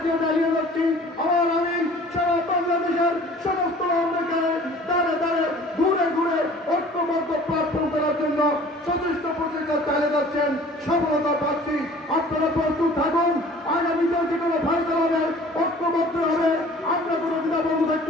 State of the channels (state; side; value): normal; both; correlation 0.48